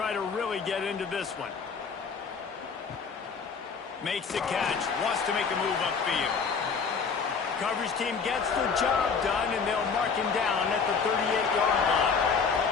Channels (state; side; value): quieter; right; 5.6 dB